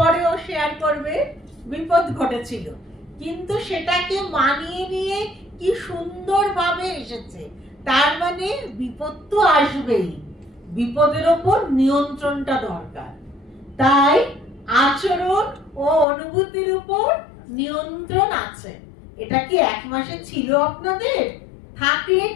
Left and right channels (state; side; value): drops out; right; at 16.1 s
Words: শেয়ার করবে বিপদ ঘটেছিল, কিন্তু সেটাকে মানিয়ে নিয়ে কি সুন্দরভাবে এসেছে। তার মানে বিপদ তো আসবেই, বিপদের ওপর নিয়ন্ত্রণটা দরকার। তাই আচরণ ও অনুভূতির উপর নিয়ন্ত্রণ আছে। এটা কি এক মাসে ছিল আপনাদের? থাকলে